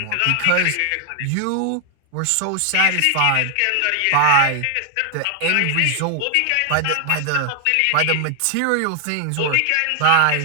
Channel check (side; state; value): both; different; correlation 0.00